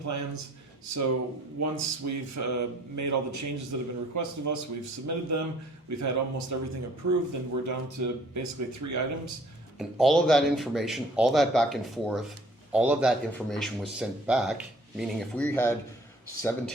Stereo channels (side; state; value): both; normal; correlation 0.56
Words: So once we've made all the changes that have been requested of us, we've submitted them, we've had almost everything approved, and we're down to basically 3 items. And all of that information, all that back and forth, all of that information was sent back, meaning if we had